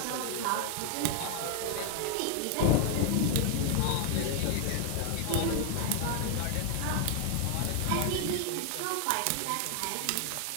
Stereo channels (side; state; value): both; different; correlation 0.00